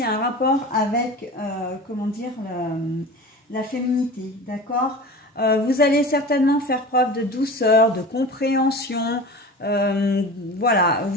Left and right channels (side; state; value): both; normal; correlation 0.34